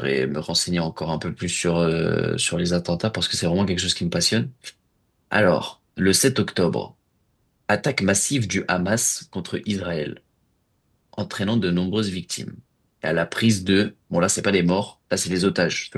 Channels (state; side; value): identical; both; correlation 1.00